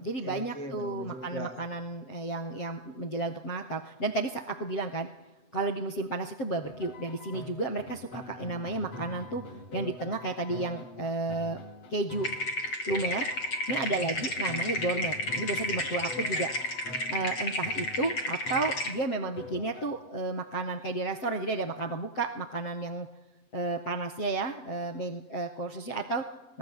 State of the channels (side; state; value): right; late; 7.9 ms